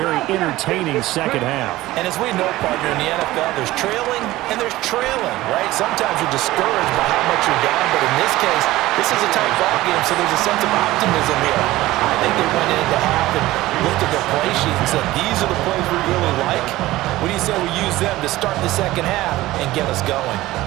entertaining second half. And as we know, partner, in the NFL, there's trailing and there's trailing, right? Sometimes you're discouraged by how much you're down, but in this case, this is a tight ball game, so there's a sense of optimism here. I think they went into half and looked at their play sheet and said, these are the plays we really like. What do you say we use them to start the second half and get us going?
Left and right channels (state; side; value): quieter; left; 17.2 dB